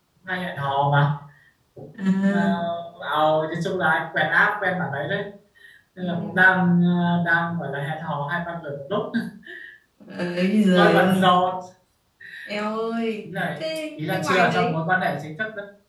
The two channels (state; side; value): identical; both; correlation 1.00